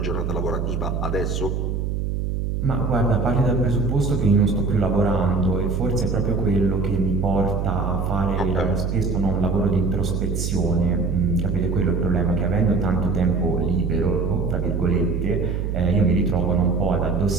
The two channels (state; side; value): noise; right; hum, 1 dB below the sound